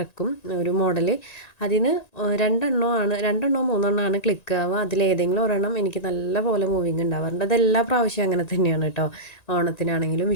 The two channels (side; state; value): right; late; 1.9 ms